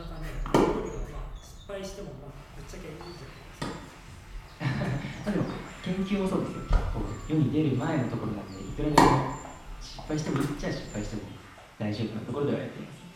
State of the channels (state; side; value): identical; both; correlation 1.00